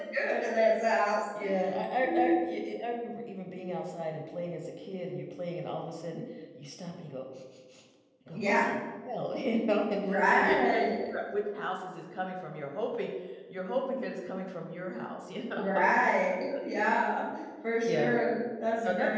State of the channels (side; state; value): both; identical; correlation 1.00